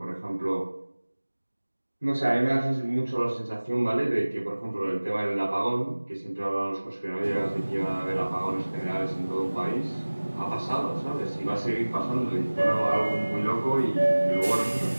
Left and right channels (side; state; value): both; inverted; correlation -1.00